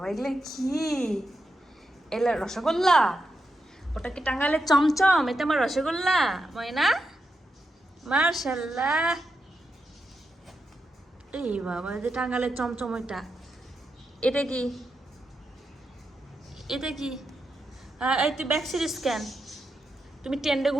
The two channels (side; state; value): both; normal; correlation 0.86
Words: এগুলো কি? এলা রসগোল্লা? ওটা কি টাঙ্গাইলের চমচম? এটা আমার রসগোল্লা ময়না। মার্শাল্লাহ। এই বাবা, যে টাঙ্গাইলের চমচম ওইটা। এটা কি? এটা কি? এই তুই ব্যাক সিরিজ কেন? তুমি টেন্টে